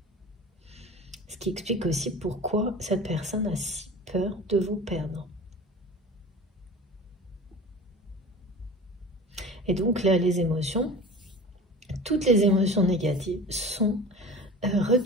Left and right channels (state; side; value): normal; both; correlation 0.37